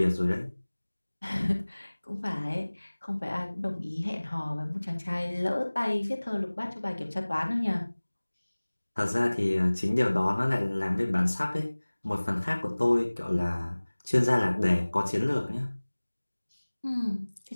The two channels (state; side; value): inverted; both; correlation -1.00